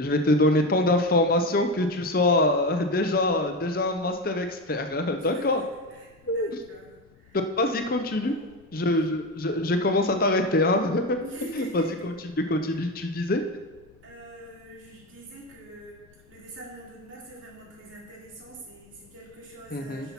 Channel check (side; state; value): left; noise; rumble, 29 dB below the sound